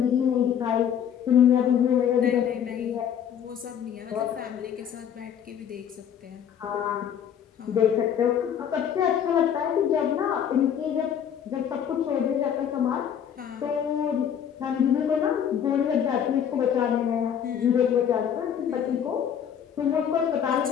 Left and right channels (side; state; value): right; quieter; 8.8 dB